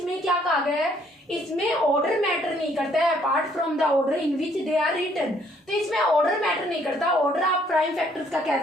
क्या कहा गया है, इसमें ऑर्डर मैटर नहीं करता है apart from the order in which they are written. तो इसमें ऑर्डर मैटर नहीं करता, ऑर्डर आप प्राइम फैक्टर्स का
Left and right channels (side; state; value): both; normal; correlation 0.65